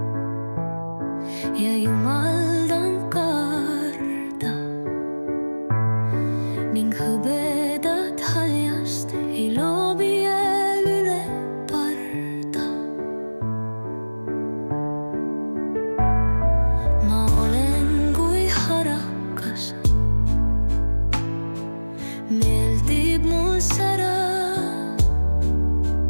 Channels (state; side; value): inverted; both; correlation -1.00